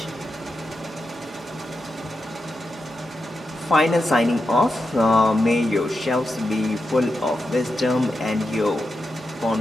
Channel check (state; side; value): normal; both; correlation 0.88